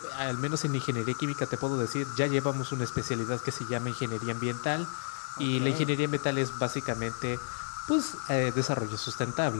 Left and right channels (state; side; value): silent; right; digital silence